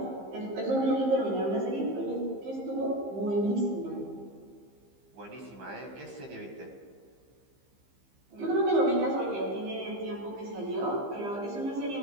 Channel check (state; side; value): late; left; 15 ms